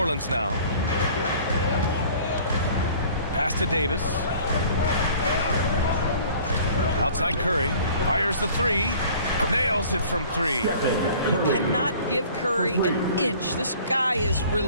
now. Pass to Davis. Outside Curry. Fires the 3. Nails it from 3. You cannot give Curry an inch. This guy is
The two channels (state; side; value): inverted; both; correlation -0.50